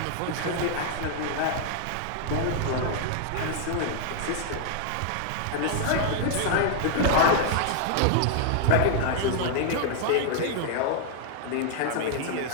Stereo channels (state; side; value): different; both; correlation -0.01